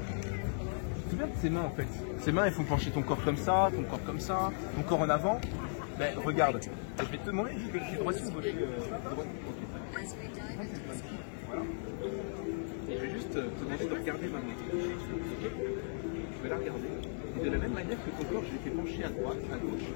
C'est bien tes mains en fait. Ces mains elles font pencher ton corps comme ça, ton corps comme ça, ton corps en avant. Ben regarde, je vais te demander, je suis droit ou gauche. Voilà. Et je vais juste te demander de regarder ma main. Okay. Je vais la regarder. Et de la même manière que ton corps, je l'ai fait pencher à droite, à gauche.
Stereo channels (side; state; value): right; silent; 54 dB below the other